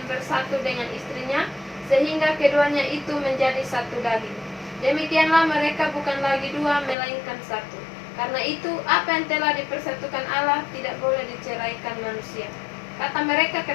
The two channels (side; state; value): right; drops out; at 7.0 s